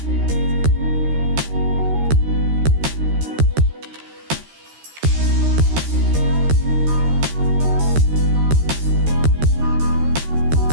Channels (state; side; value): late; left; 13 ms